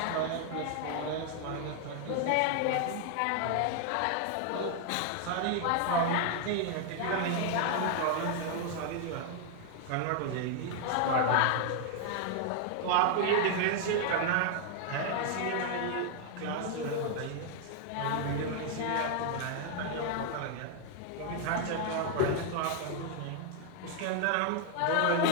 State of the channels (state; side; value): different; both; correlation 0.00